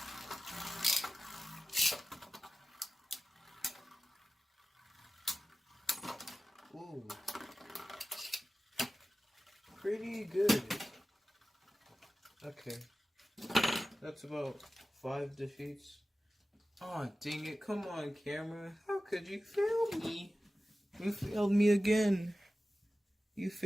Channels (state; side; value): normal; both; correlation 0.95